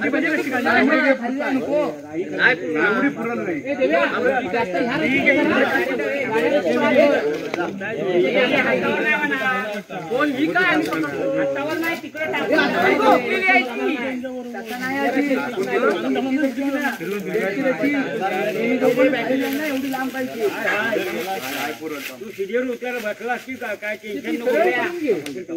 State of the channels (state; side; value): identical; both; correlation 1.00